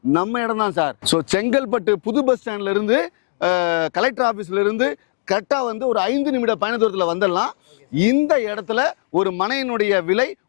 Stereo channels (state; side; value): silent; right; digital silence